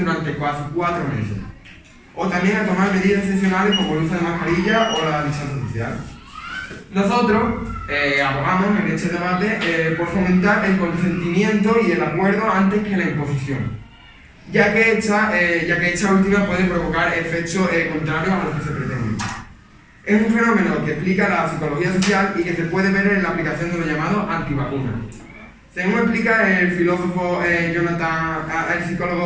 casi 4 meses. O también a tomar medidas excepcionales como el uso de mascarilla o la distancia social. Nosotros abogamos en este debate por fomentar el consentimiento y el acuerdo antes que la imposición, ya que esta última puede provocar efectos contrarios a los que se pretenden. Es un fenómeno que explica la psicología social y que se puede ver en la aplicación de lo llamado antivacunas. Según explica el psicólogo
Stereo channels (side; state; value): both; identical; correlation 1.00